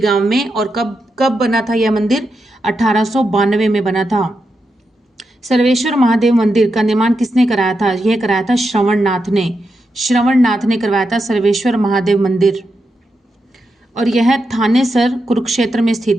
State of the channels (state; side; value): normal; both; correlation 0.86